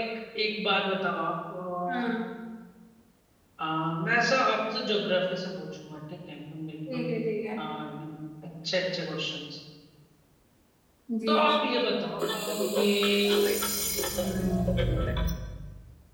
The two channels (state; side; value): identical; both; correlation 1.00